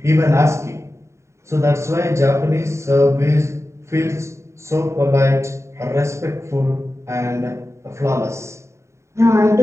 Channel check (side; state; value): left; late; 0.14 ms